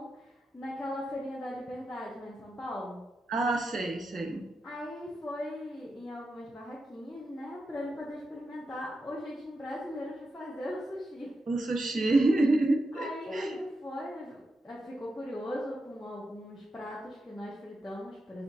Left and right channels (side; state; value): both; normal; correlation 0.88